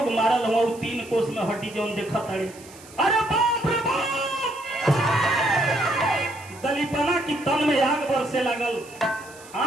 मारल हुआ 3 कोस में हड्डी जौन देखा तारे। अरे बाप रे बाप, दलीपना की तन में आग बरसे लगल,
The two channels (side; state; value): right; noise; hiss, 21 dB below the sound